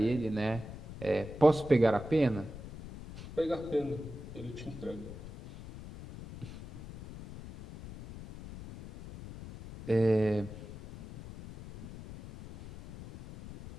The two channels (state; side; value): noise; left; rumble, 13 dB below the sound